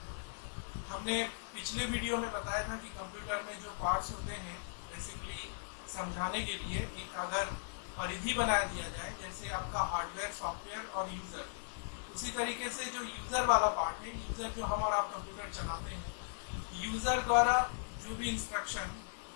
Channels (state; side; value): silent; right; 52 dB below the other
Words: हमने पिछले वीडियो में बताया था कि कंप्यूटर में जो पार्ट्स होते हैं बेसिकली समझाने के लिए एक अगर परिधि बना दिया जाए, जैसे आपका हार्डवेयर, सॉफ्टवेयर और यूज़र, उसी तरीके से जो यूज़र वाला पार्ट है, यूज़र जो हम और आप कंप्यूटर चलाते हैं, यूज़र द्वारा जो भी इंस्ट्रक्शन